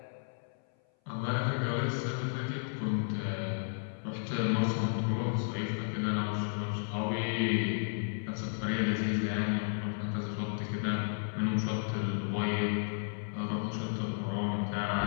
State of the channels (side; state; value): right; silent; 56 dB below the other